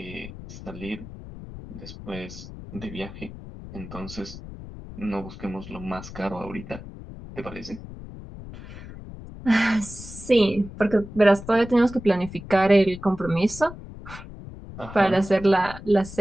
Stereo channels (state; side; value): noise; left; rumble, 13 dB below the sound